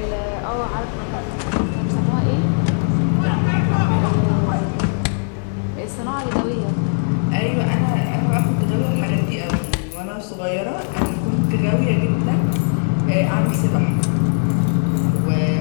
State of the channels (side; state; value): right; silent; 66 dB below the other